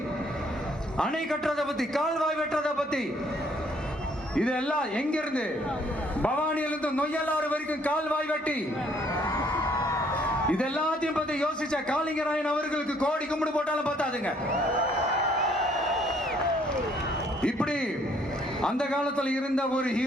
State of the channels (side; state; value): both; normal; correlation 0.64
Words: அணை கட்டுறதை பத்தி, கால்வாய் வெட்டுறதை பத்தி, இதெல்லாம் எங்கிருந்து? பவானியிலிருந்து நொய்யலாறு வரைக்கும் கால்வாய் வெட்டி இது எல்லாத்தையும் பத்தி யோசிச்ச காளிங்கராயன் அவர்களுக்கு கோடி கும்பிடு போட்டாலும் பார்த்தாதுங்க. இப்படி அந்த காலத்துல இருந்த ஒரு